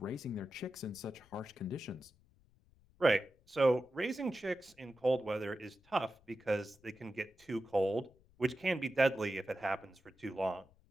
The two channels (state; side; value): noise; left; rumble, 30 dB below the sound